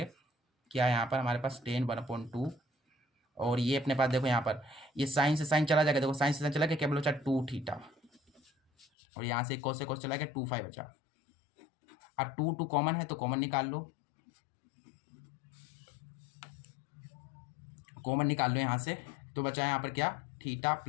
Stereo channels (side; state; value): right; drops out; at 8.8 s